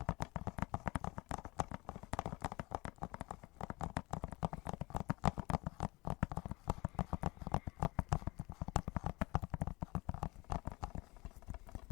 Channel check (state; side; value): quieter; right; 23.0 dB